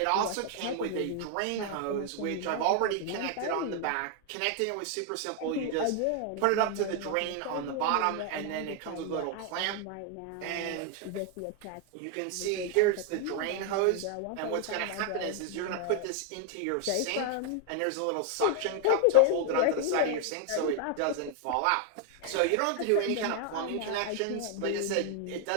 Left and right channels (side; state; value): both; different; correlation 0.00